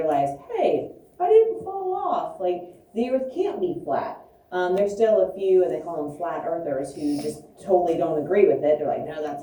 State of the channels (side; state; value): both; identical; correlation 1.00